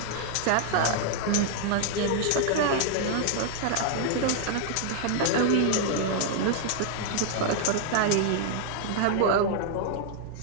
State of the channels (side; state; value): both; different; correlation 0.00